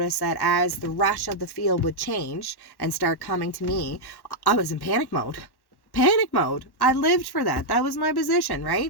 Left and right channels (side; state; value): right; late; 1.1 ms